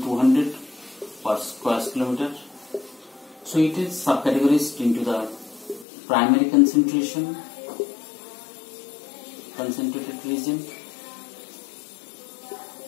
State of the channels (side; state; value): right; drops out; at 5.9 s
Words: 200 per square kilometer. So it is subcategorized into the primary concentration, concentrated region,